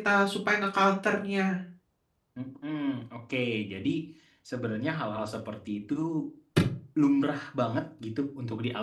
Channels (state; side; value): identical; both; correlation 1.00